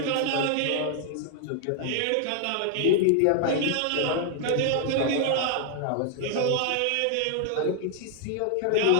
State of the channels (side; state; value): both; different; correlation 0.00